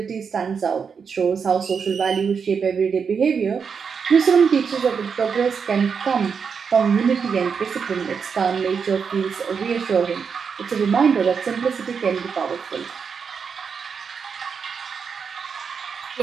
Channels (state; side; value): quieter; left; 6.1 dB